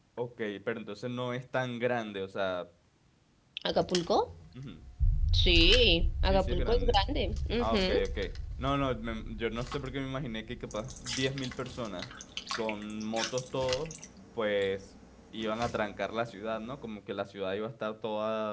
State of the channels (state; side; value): identical; both; correlation 1.00